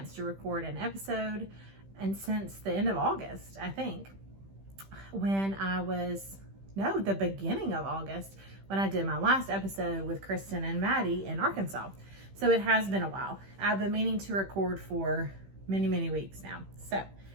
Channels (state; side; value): late; left; 15 ms